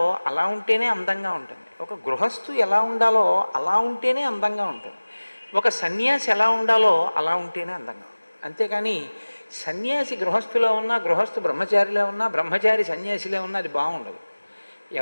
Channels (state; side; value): inverted; both; correlation -1.00